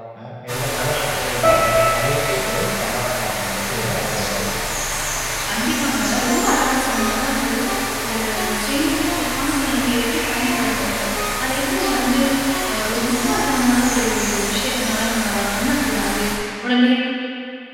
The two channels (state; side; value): identical; both; correlation 1.00